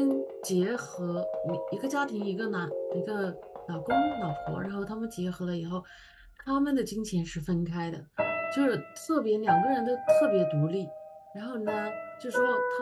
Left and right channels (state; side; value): identical; both; correlation 1.00